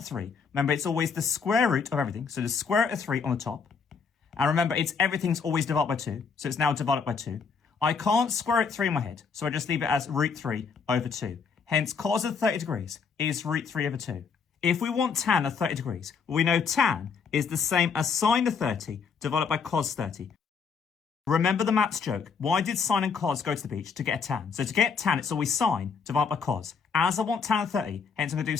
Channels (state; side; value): quieter; right; 5.8 dB